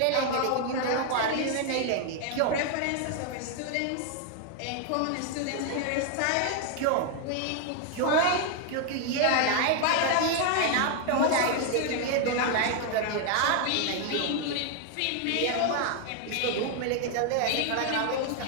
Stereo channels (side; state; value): both; different; correlation 0.00